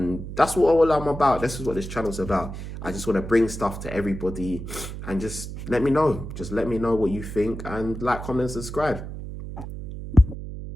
that's what all I'm about. This is what this channel's about. I just want to bring stuff to everybody, and just let me know. Just let me know what you think, and like, comment, subscribe.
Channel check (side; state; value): right; noise; hum, 9 dB below the sound